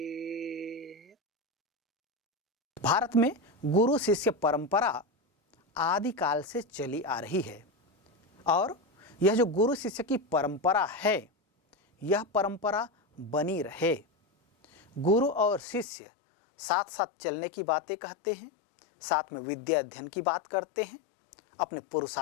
भारत में गुरु शिष्य परंपरा आदि काल से चली आ रही है और यह जो गुरु शिष्य की परंपरा है यह परंपरा बनी रहे। गुरु और शिष्य साथ साथ चलने की बातें कहते हैं, साथ में विद्या अध्ययन की बात करते हैं, अपने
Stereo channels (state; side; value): drops out; right; at 15.9 s